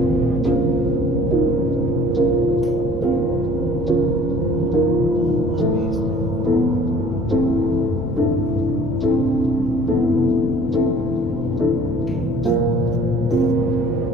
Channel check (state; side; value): normal; both; correlation 0.52